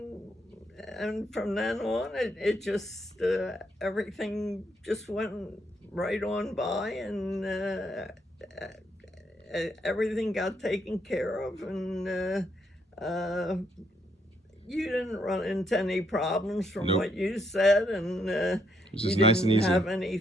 And from then on, it just everything just went right on by, and everything got taken care of, and you didn't run into any problems from Nope. what you said, and It's you just nice and didn't easy. have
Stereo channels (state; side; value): normal; both; correlation 0.74